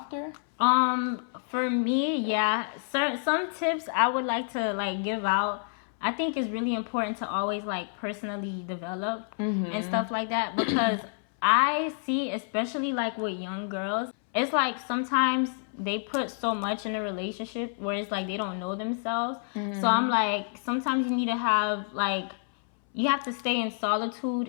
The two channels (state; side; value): silent; right; 59 dB below the other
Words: For me, yeah. Some tips I would like to, like, give out. I think it's really important to always, like, personally develop and stuff like that. Because I see, especially, like, with young girls, it's like sometimes they put so much in a relationship where it's like they don't know themselves. So I'm like, sometimes you need to have, like, you have to stay in